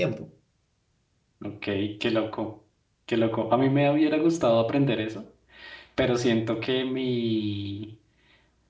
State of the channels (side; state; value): both; identical; correlation 1.00